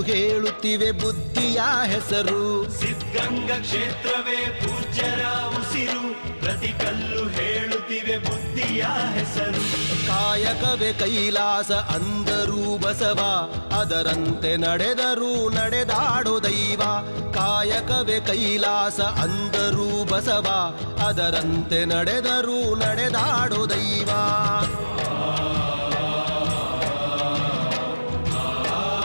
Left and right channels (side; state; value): both; inverted; correlation -1.00